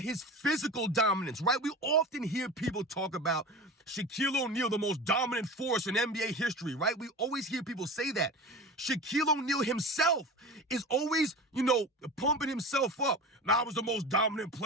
his physical dominance, right? We often hear people talk about Shaquille O'Neal, the most dominant force in NBA history, right? We always hear people say that. Shaquille O'Neal himself is always, pumping himself up. I was the most dominant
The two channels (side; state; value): both; normal; correlation 0.32